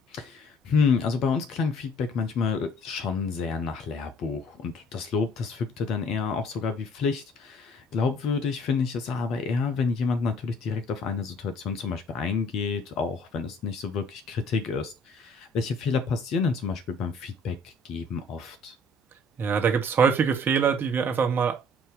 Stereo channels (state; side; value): normal; both; correlation 0.57